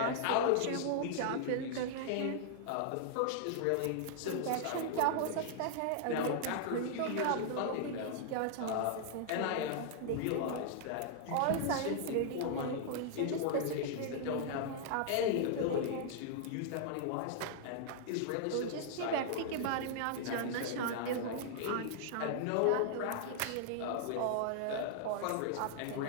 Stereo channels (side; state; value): both; different; correlation -0.01